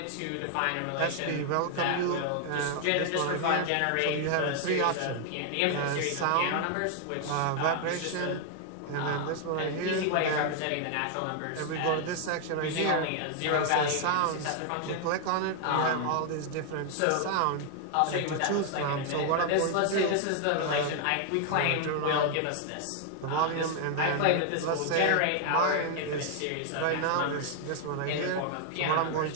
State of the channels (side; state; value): both; different; correlation 0.00